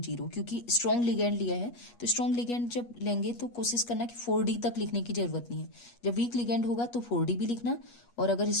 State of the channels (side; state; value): right; late; 8.4 ms